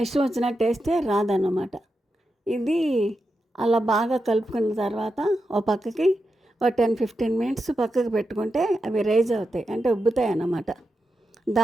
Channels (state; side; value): normal; both; correlation 0.88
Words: వచ్చినట్టు వేస్తే రాదన్నమాట. ఇది అలా బాగా కలుపుకున్న తర్వాత ఓ పక్కకి 10-15 మినిట్స్ పక్కకు పెట్టుకుంటే అవి రైజ్ అవుతాయి, అంటే ఉబ్బుతాయి అన్నమాట.